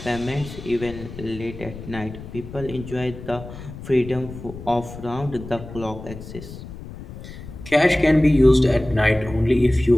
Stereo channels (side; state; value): left; noise; rumble, 13 dB below the sound